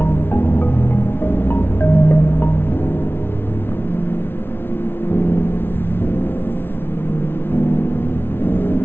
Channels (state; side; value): late; right; 0.11 ms